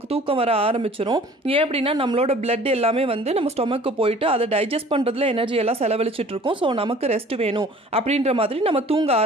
தூக்கம் வர ஆரம்பிச்சிடும். ஏன் அப்படின்னா நம்மளோட பிளட் எல்லாமே வந்து நம்ம ஸ்டொமக்கு போயிட்டு அதை டைஜஸ்ட் பண்ணுறதுல எனர்ஜி எல்லாம் செலவழிச்சிட்டு இருக்கோம். ஸோ நமக்கு ரெஸ்ட் வேணும் அப்படின்ற மாதிரி நம்ம தூங்க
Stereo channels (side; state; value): both; normal; correlation 0.49